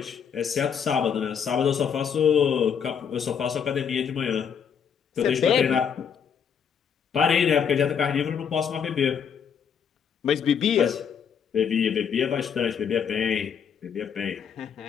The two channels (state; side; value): quieter; right; 7.4 dB